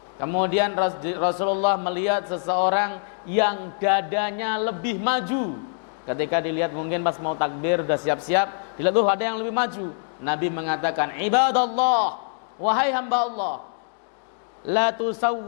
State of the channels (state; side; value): silent; right; digital silence